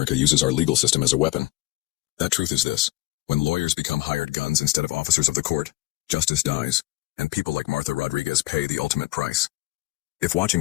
uses our legal system as a weapon. That truth is this: when lawyers become hired guns instead of officers of the court, justice dies, and people like Martha Rodriguez pay the ultimate price. If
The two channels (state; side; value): quieter; right; 19.6 dB